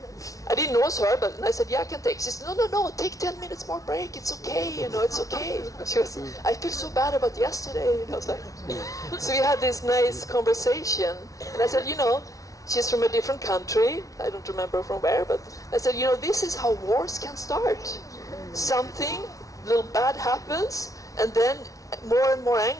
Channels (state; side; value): late; right; 0.17 ms